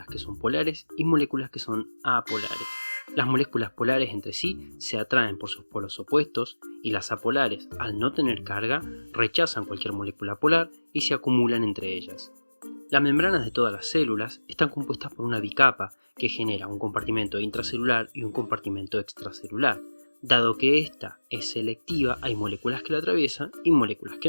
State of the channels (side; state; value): both; inverted; correlation -1.00